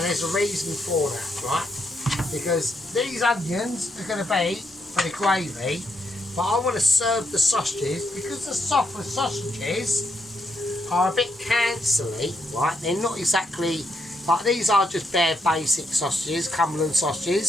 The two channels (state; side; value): normal; both; correlation 0.77